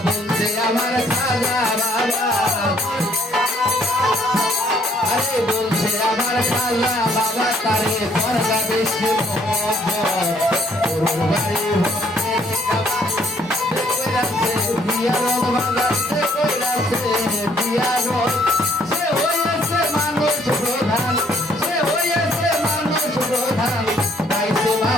বলছে আমার খাজা বাবা আরে বলছে আমার খাজা বাবা তারে দরগা বেশি মোহব্বত গরুর বাড়ি ভক্তে কইরাছে দিয়ারত বাজাতে কইরাছে দিয়ারত সে হইছে মানুষ প্রধান সে হইছে মানুষ প্রধান পাইছে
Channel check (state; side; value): normal; both; correlation 0.64